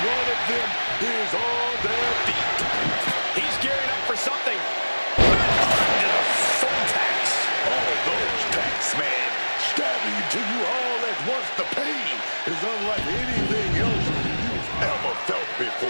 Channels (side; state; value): both; inverted; correlation -1.00